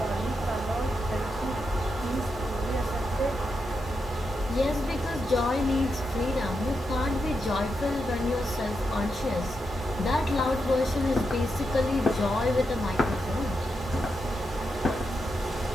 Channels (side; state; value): both; normal; correlation 0.85